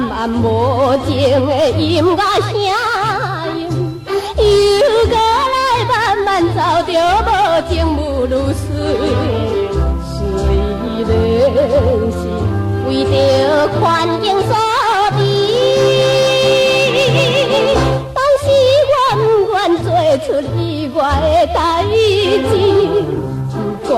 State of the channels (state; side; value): identical; both; correlation 1.00